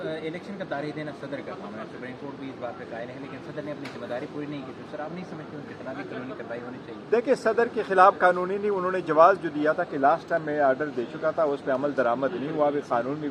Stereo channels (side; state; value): both; identical; correlation 1.00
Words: इलेक्शन का तारीख देना सदर का काम है, सुप्रीम कोर्ट भी इस बात पे कायल है, लेकिन सदर ने अपनी जिम्मेदारी पूरी नहीं की। तो सर, आप नहीं समझते उनके खिलाफ भी कानूनी कार्रवाई होनी चाहिए? देखिए, सदर के खिलाफ कानूनी नहीं, उन्होंने जवाब जो दिया था कि लास्ट टाइम मैं आर्डर दे चुका था, उस पर अमल दरामद नहीं हुआ। अभी कानून में